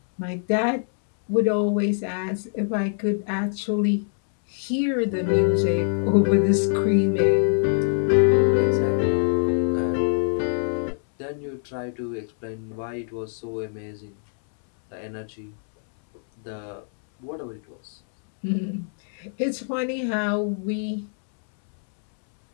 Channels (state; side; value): silent; right; 63 dB below the other